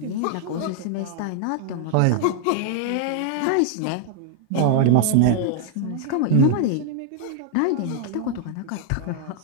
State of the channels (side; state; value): both; different; correlation 0.00